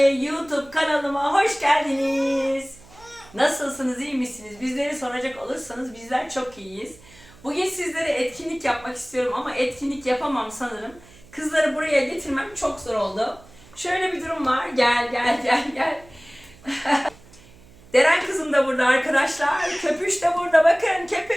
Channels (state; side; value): noise; right; hum, 24 dB below the sound